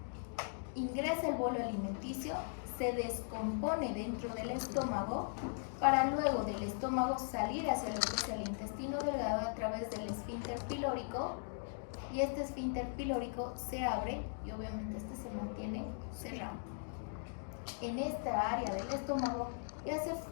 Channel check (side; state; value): right; silent; digital silence